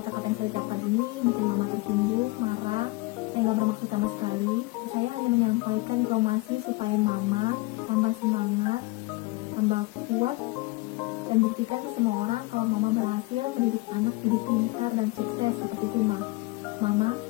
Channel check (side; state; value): right; quieter; 22.3 dB